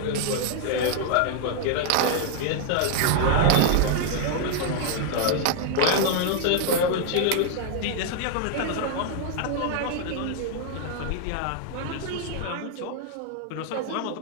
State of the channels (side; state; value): both; different; correlation 0.00